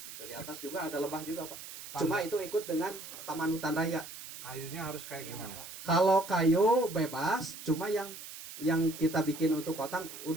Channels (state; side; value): noise; right; hiss, 12 dB below the sound